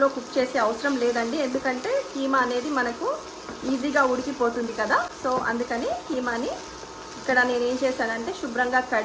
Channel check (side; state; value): both; identical; correlation 1.00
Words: కుక్ చేసే అవసరం లేదండి. ఎందుకంటే కీమా అనేది మనకు ఈజీగా ఉడికిపోతుంది కదా. సో అందుకని కీమాని ఇక్కడ నేను ఏం చేశానంటే శుభ్రంగా